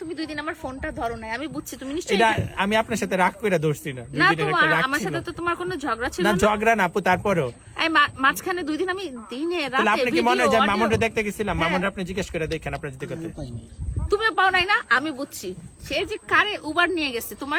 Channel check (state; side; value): identical; both; correlation 1.00